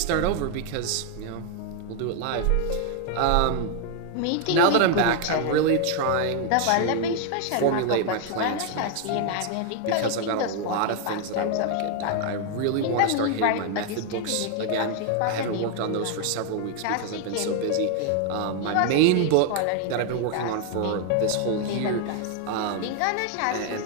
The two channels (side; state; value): both; different; correlation 0.00